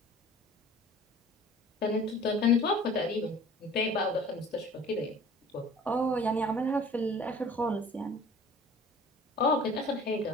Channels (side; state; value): both; normal; correlation 0.47